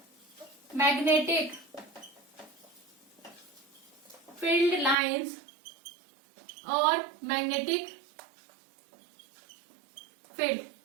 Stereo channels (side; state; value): left; drops out; at 5.0 s